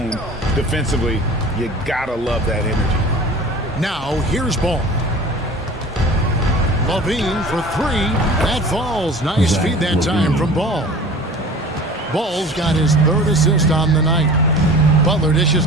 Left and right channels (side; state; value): both; normal; correlation 0.41